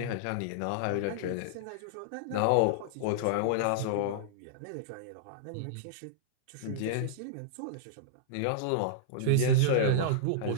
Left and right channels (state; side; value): different; both; correlation -0.02